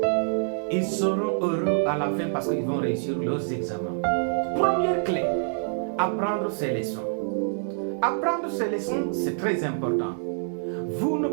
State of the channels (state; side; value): silent; left; 61 dB below the other